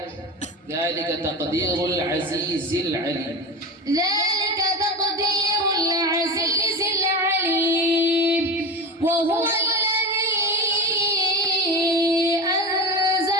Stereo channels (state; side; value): normal; both; correlation 0.25